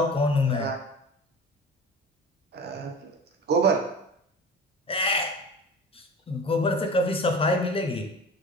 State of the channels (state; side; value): normal; both; correlation 0.36